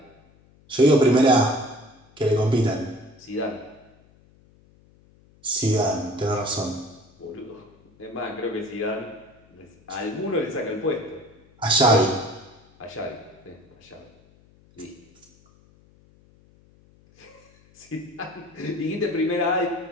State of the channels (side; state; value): left; noise; hum, 29 dB below the sound